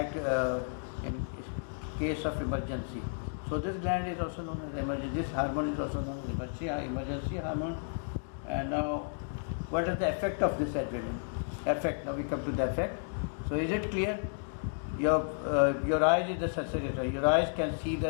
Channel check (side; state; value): right; silent; digital silence